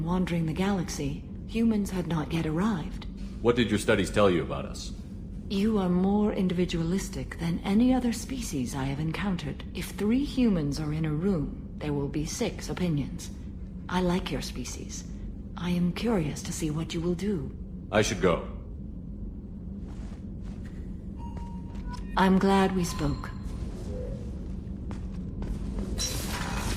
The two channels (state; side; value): identical; both; correlation 1.00